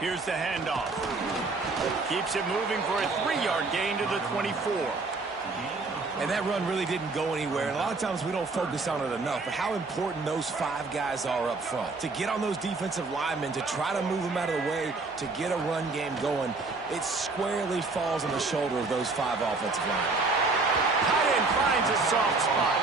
the handoff. Keeps it moving for a 3-yard gain to the 24. And that run really didn't go anywhere. And a lot of times we don't focus on it enough, but how important those 5 guys are up front. To get on those defensive linemen, to try to move them out of the way, to get a run game going, it squarely falls on the shoulder of those 5 offensive linemen. Tight end finds a soft spot.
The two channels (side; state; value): left; quieter; 3.8 dB